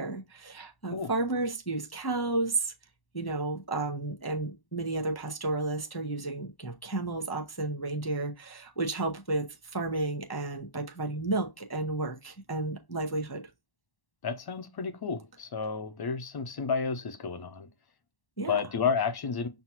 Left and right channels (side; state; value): right; late; 1.1 ms